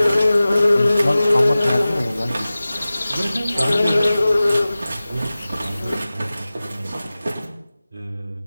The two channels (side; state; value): both; inverted; correlation -0.97